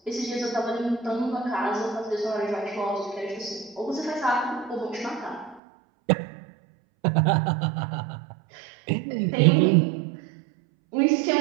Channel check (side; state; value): left; drops out; at 5.6 s